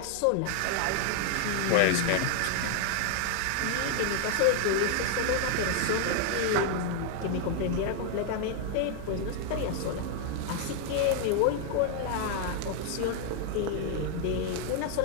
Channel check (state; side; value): different; both; correlation 0.00